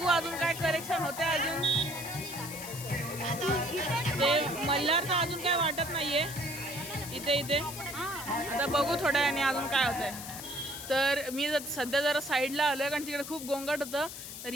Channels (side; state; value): left; noise; hiss, 10 dB below the sound